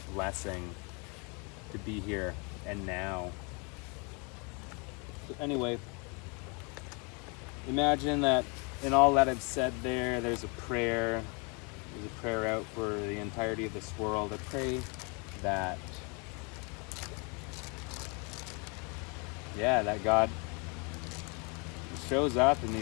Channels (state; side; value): quieter; right; 32.9 dB